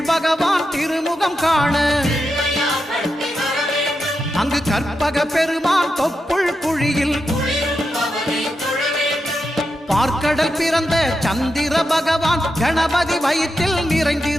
பகவான் திருமுகம் காண அங்கு கற்பக பெருமான் தொப்புள் குழியில் பார்க்கடல் பிறந்த சந்திர பகவான் கணபதி வயிற்றில்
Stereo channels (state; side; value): normal; both; correlation 0.87